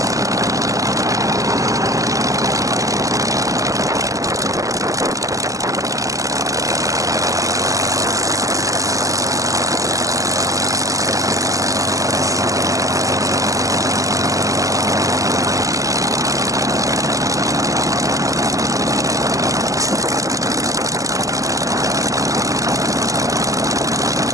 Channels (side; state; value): left; late; 0.16 ms